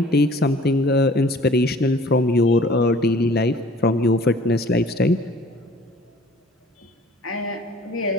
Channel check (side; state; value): both; normal; correlation 0.51